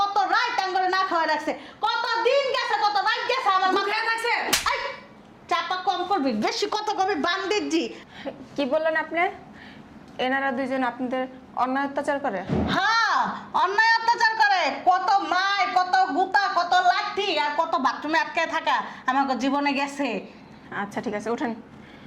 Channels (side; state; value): both; identical; correlation 1.00